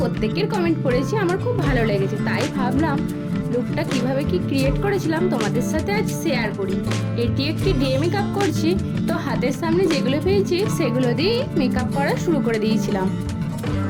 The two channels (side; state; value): both; identical; correlation 1.00